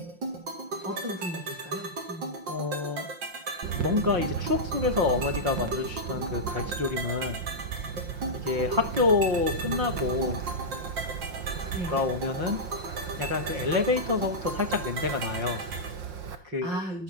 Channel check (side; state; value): left; late; 5.6 ms